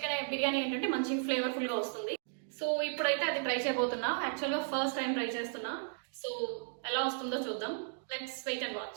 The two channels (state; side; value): silent; left; digital silence